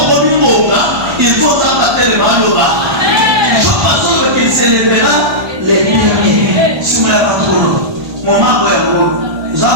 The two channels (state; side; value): late; left; 1.2 ms